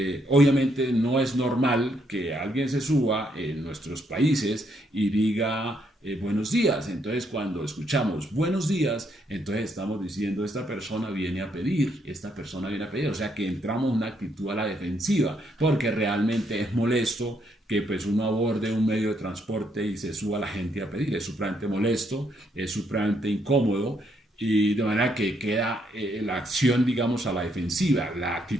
obviamente no es normal que alguien se suba en nuestros países y diga buenos días. Entonces cuando escuchamos buenos días, entonces estamos diciendo esta persona viene a pedir, o sea que entramos en una actitud a la defensiva, porque realmente es molesto que pues uno aborde un medio de transporte y se suba la gente a pedir, es supremamente molesto, es supremamente incómodo, y de manera que queda la acción, digamos, a la defensiva, la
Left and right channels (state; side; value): normal; both; correlation 0.74